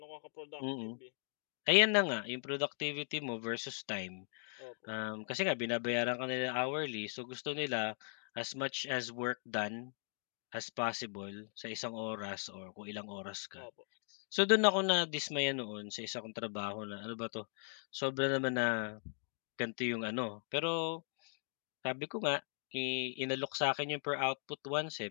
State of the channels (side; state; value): right; silent; 52 dB below the other